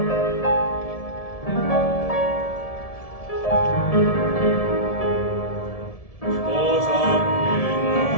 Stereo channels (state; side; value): late; right; 1.7 ms